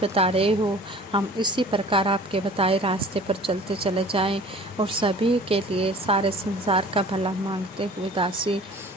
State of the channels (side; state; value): both; normal; correlation 0.46